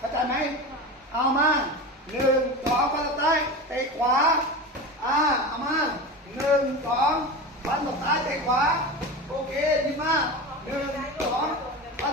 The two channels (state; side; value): normal; both; correlation 0.26